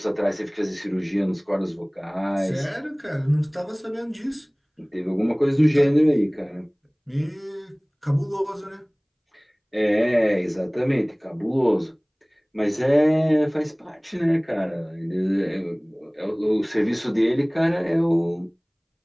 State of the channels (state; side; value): identical; both; correlation 1.00